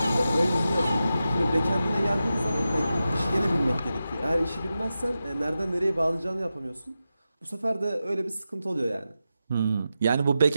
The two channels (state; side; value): inverted; both; correlation -0.91